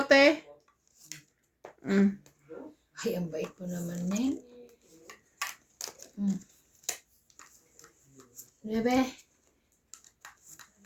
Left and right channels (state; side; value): identical; both; correlation 1.00